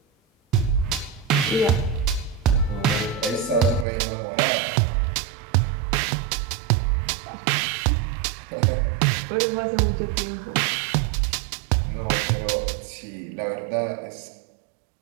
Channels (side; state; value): left; drops out; at 3.9 s